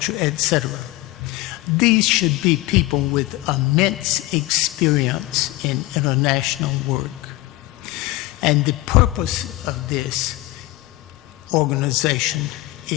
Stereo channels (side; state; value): right; quieter; 19.2 dB